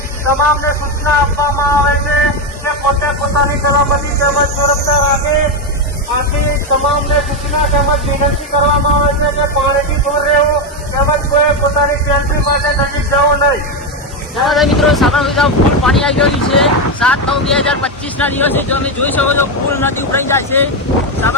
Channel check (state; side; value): normal; both; correlation 0.08